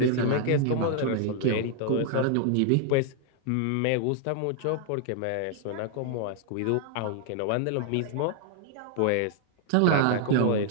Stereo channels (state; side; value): different; both; correlation 0.00